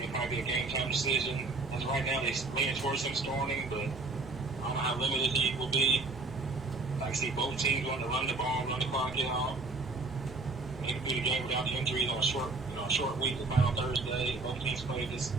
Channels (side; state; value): left; quieter; 3.5 dB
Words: probably be a game-time decision. As right now, they're leaning towards him starting, but I don't know how limited he will be. I see both teams wanting to run the ball, run the clock out. Maybe do the game without the injuries on a short week. They play on Thursday. Both teams played this